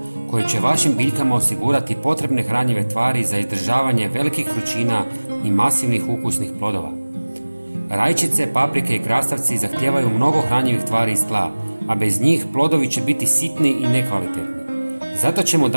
koje će vašim biljkama osigurati potrebne hranjive tvari za izdržavanje velikih vrućina i masivnih ukusnih plodova. Rajčice, paprike i krastavci zahtijevaju mnogo hranjivih tvari iz tla, a bez njih plodovi će biti sitni i nekvalitetni. Zato ćemo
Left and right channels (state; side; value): inverted; both; correlation -1.00